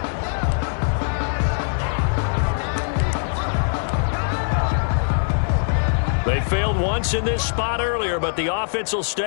They failed once in this spot earlier, but the offense will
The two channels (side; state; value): right; silent; digital silence